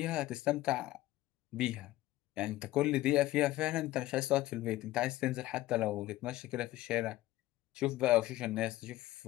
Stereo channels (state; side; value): quieter; right; 16.4 dB